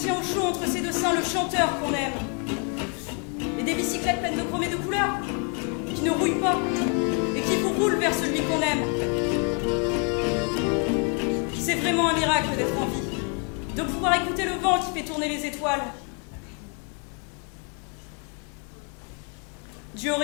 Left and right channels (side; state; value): right; quieter; 36.9 dB